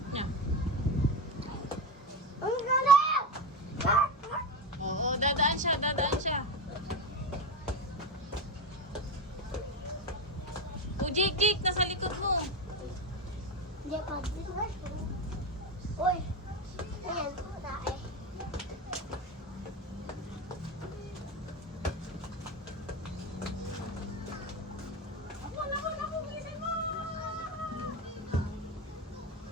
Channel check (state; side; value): normal; both; correlation 0.18